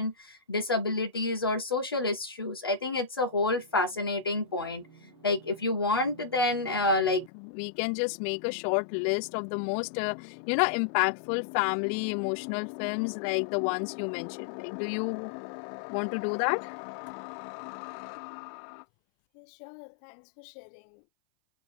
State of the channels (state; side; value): drops out; right; at 7.3 s